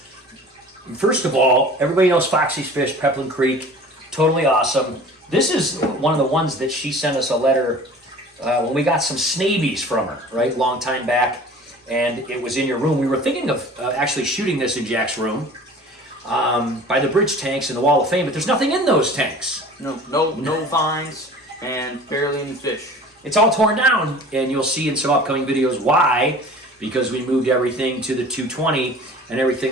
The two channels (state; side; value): normal; both; correlation 0.43